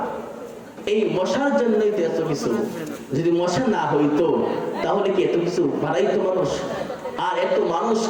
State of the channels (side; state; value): both; identical; correlation 1.00